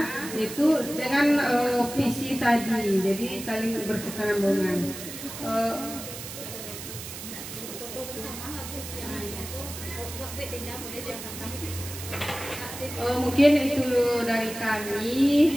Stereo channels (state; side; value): noise; right; hiss, 10 dB below the sound